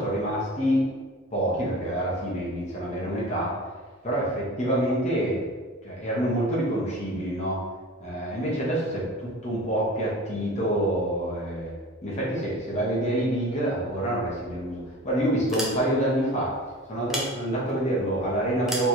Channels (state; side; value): normal; both; correlation 0.38